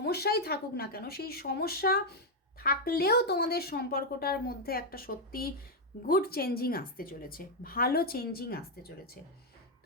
থাকুক না কেন, সেই সমস্যা থাকলেও তোমাদের সম্পর্কটার মধ্যে একটা সত্যি গুড চেঞ্জিং আসতে চলেছে, ভালো চেঞ্জিং আসতে চলেছে।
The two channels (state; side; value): normal; both; correlation 0.01